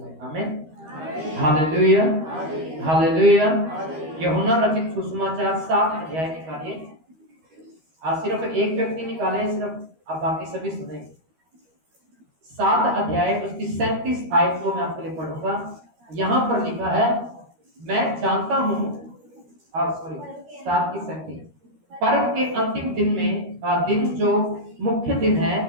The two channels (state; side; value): late; left; 13 ms